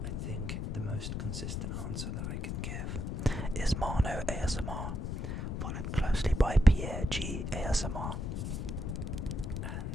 I think the most consistent answer that I can give is Mano ASMR, followed closely by Pierre G ASMR.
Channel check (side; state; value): left; noise; rumble, 3 dB below the sound